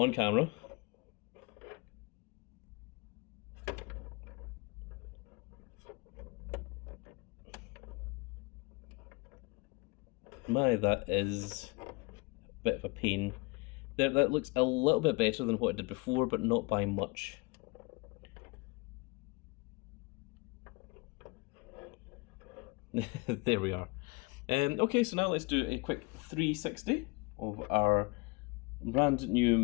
camera. My, that is a bit of a pain. There, that looks a little bit better than what I did before, but not by much. There we are. Okay, so now let's do a quick 360 of our brand new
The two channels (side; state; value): right; quieter; 25.8 dB